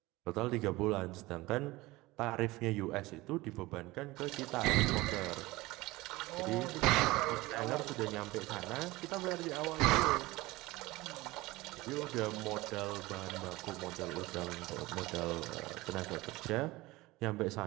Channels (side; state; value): left; quieter; 20.2 dB